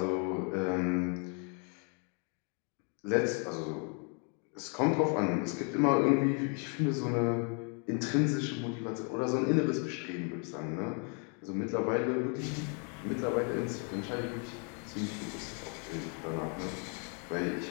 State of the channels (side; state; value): right; quieter; 38.9 dB